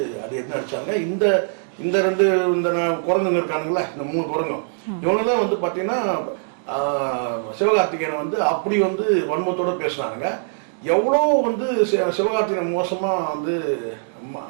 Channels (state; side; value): silent; left; digital silence